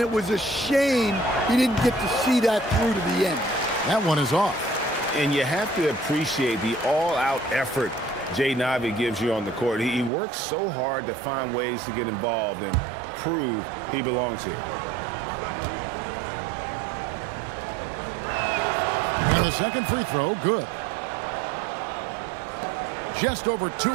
it was a shame he didn't get to see that through to the end. That one is off. And you have to appreciate the all-out effort Jaden Ivey gives you on the court. He works so hard to find ways to get involved and prove he belongs here. And the second free throw, good. Just over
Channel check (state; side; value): drops out; left; at 10.1 s